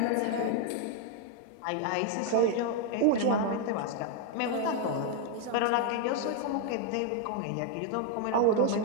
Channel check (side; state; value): both; different; correlation 0.00